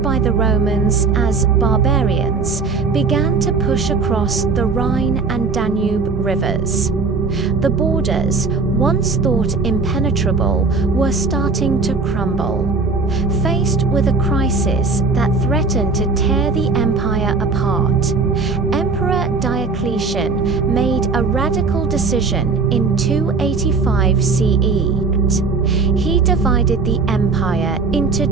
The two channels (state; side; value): quieter; left; 4.3 dB